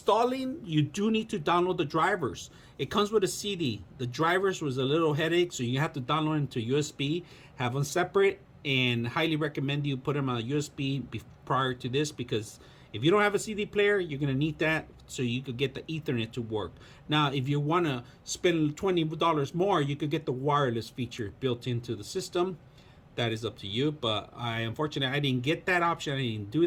You do need to download the drivers. It comes with a CD. The drivers was a little headache, so you have to download them to USB, have them separate, and highly recommend you put them on a USB prior to this, because if you don't have a CD player, you're going to need that so you could get the Ethernet to work. Now, if you want to spend $20 more, you could get the wireless feature built into the system. That is up to you, but unfortunately, I didn't get that option. I didn't do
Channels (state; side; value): identical; both; correlation 1.00